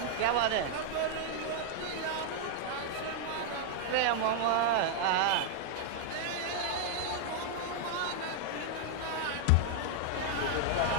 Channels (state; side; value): different; both; correlation 0.00